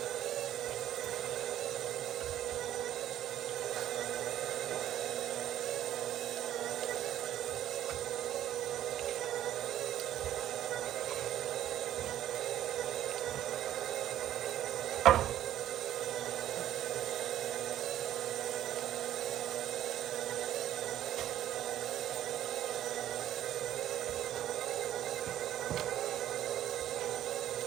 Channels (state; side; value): quieter; left; 12.0 dB